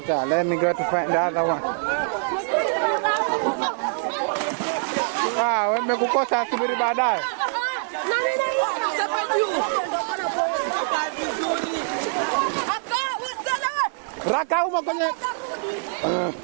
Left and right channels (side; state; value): left; silent; digital silence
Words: Let me go to find the other one. Wamekukosa subiri baadaye. Raka uma kwenye.